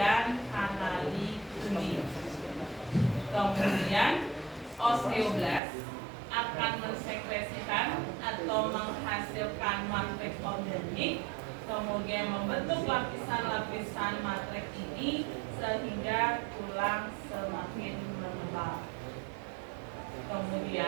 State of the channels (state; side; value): drops out; left; at 5.6 s